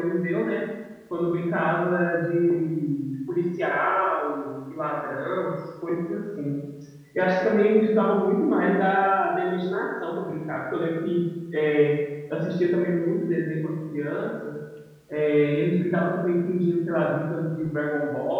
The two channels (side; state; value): both; identical; correlation 1.00